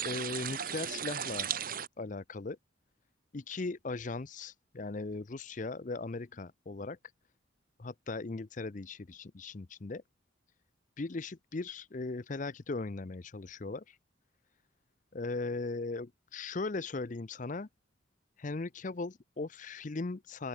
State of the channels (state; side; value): normal; both; correlation 0.28